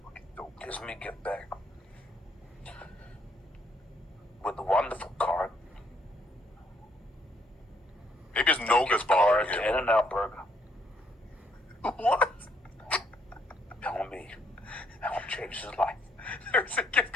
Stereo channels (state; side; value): normal; both; correlation 0.70